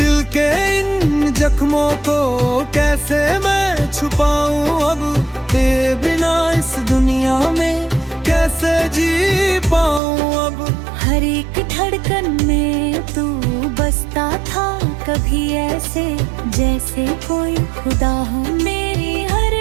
के इन जख्मों को कैसे मैं छुपाऊं अब, तेरे बिना इस दुनिया में कैसे जी पाऊं अब। हर एक धड़कन में तू बसता था कभी ऐसे जैसे कोई खुदा हो, मेरी हर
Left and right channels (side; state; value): left; drops out; at 10.0 s